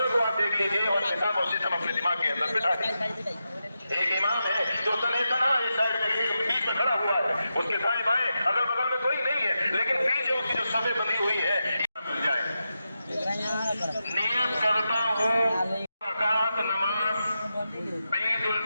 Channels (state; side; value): inverted; both; correlation -0.89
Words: को आप देख लीजिए और निकाम और सिस्टम अपने दिमाग के अंदर बिठा दीजिए। एक इमाम है जो तना इस साइड में बीच में खड़ा हुआ है, उसके दाएं बाएं अगल बगल में कोई नहीं है, लेकिन पीछे उसकी जो सभे बनी हुई है मिल जाए। नियत करता हूँ रकात नमाज ईद उल